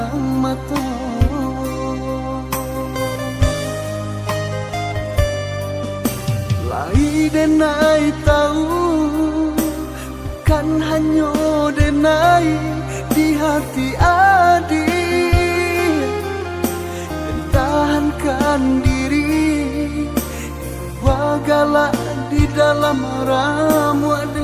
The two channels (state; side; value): identical; both; correlation 1.00